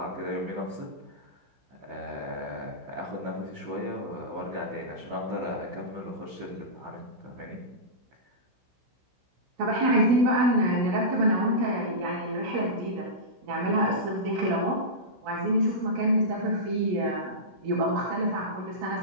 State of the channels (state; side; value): late; left; 15 ms